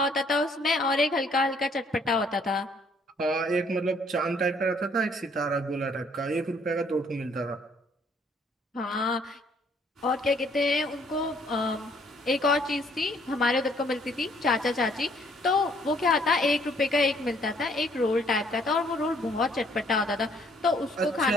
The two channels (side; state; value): both; normal; correlation 0.64